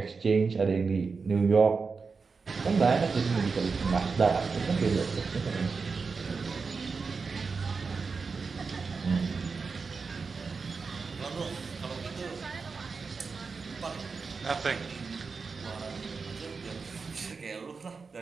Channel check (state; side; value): quieter; left; 4.8 dB